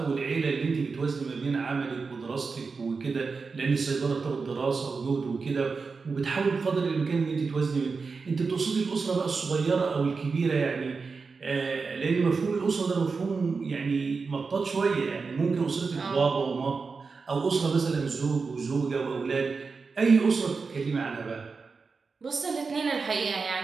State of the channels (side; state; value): left; quieter; 4.7 dB